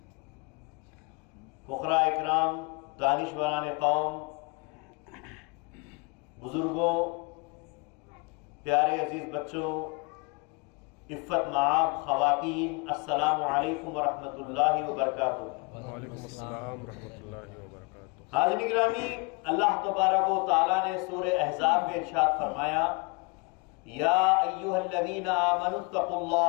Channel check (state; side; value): quieter; right; 29.8 dB